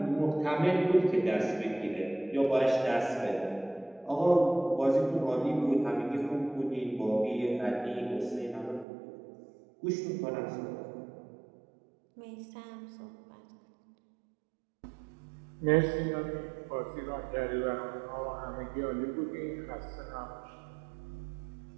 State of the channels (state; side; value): drops out; left; at 8.8 s